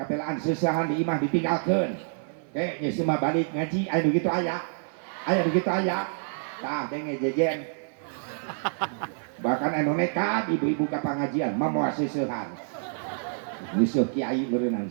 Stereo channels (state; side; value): silent; left; 58 dB below the other